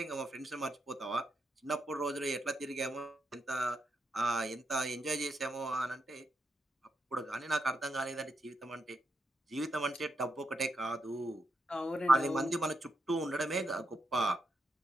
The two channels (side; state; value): both; normal; correlation 0.83